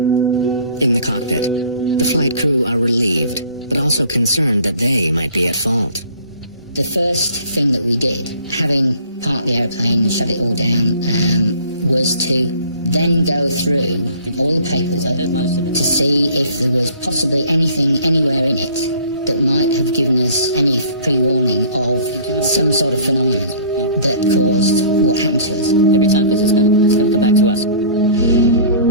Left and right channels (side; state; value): both; inverted; correlation -0.49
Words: In the cockpit, the flight crew are relieved, but also concerned that they might be at fault. The first thing that we did, having parked the airplane and shut it all down, was to then go through all the paperwork to see if there was possibly anything anywhere in it that might have given us any pre-warning of some sort of phenomenon that caused what happened to us. Every time, because it's going to come back to us.